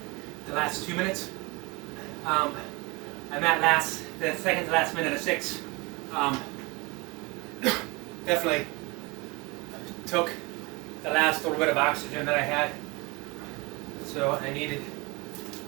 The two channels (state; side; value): quieter; left; 26.0 dB